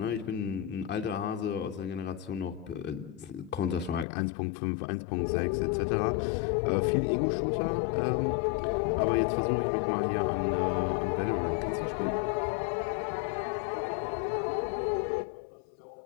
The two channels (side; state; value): right; drops out; at 4.0 s